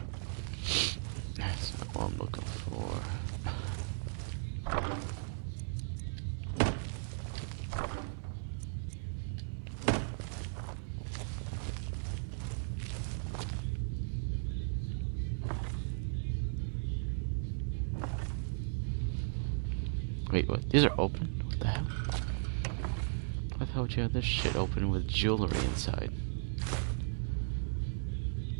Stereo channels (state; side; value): silent; left; 54 dB below the other